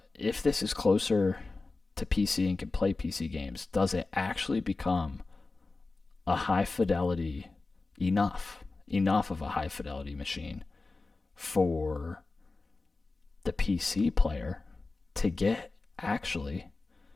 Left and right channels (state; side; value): quieter; right; 3.6 dB